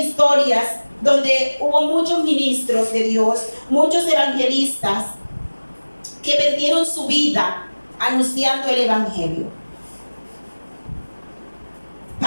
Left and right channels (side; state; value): both; inverted; correlation -1.00